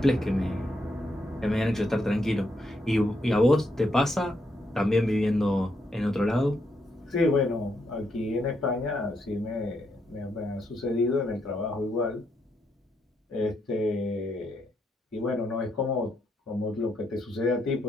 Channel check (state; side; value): normal; both; correlation 0.78